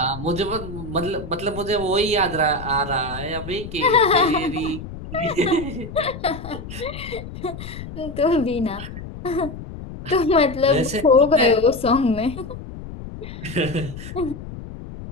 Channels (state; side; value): noise; left; rumble, 11 dB below the sound